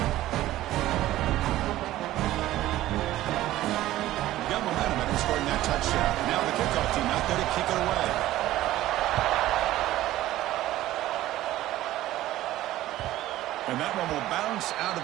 Scoring that touchdown. Now the kickoff team out there to kick it away. And that one will bounce out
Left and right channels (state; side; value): quieter; left; 15.0 dB